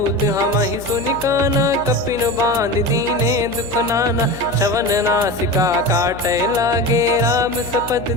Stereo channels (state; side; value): noise; left; hum, 15 dB below the sound